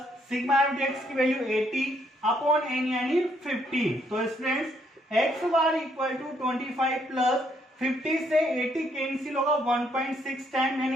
sigma f dx की वैल्यू 80 अपॉन n यानी 50। तो students x bar equal to 25 plus 50 से 80 कैंसिल होगा 1.6 टाइम, यानी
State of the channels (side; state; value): both; normal; correlation 0.71